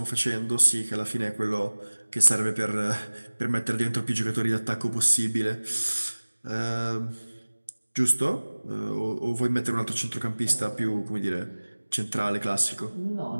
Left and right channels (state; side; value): inverted; both; correlation -1.00